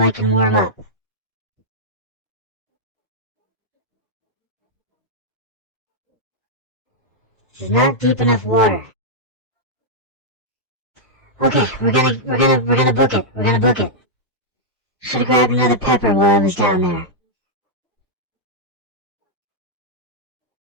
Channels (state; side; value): normal; both; correlation -0.06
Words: can warm up. This is not deep enough water. Okay, we're gonna book it. We're gonna book it. Should've grabbed another pepper while I was down there.